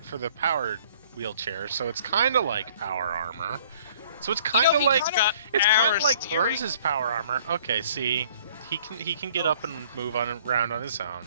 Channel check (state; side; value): inverted; both; correlation -0.57